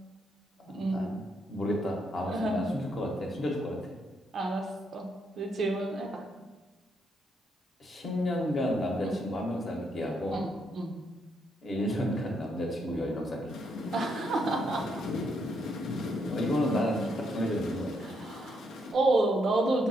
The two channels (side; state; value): both; normal; correlation 0.76